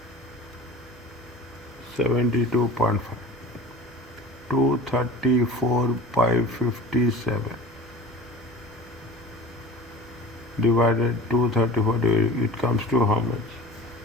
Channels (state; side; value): normal; both; correlation 0.38